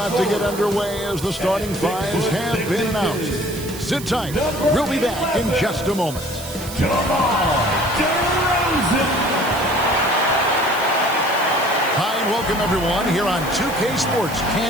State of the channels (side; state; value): right; noise; hiss, 13 dB below the sound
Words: to get underway as the starting fives have been announced. Sit tight. We'll be back in just a moment. Hi, and welcome everyone here on 2K Sports.